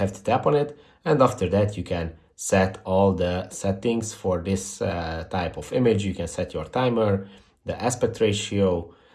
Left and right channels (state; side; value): identical; both; correlation 1.00